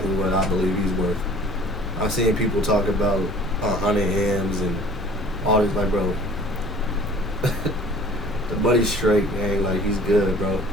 what I believe he's worth. I've seen people talk about 100 M's and all this, like, bro. The buddy's straight, man. Like, he's good, bro.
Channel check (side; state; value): both; normal; correlation 0.49